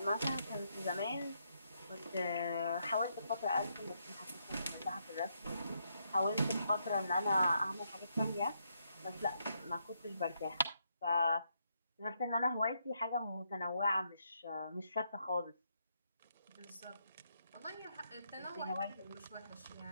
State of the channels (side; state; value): both; inverted; correlation -0.78